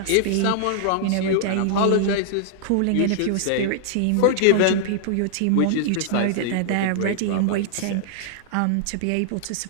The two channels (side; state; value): both; different; correlation -0.01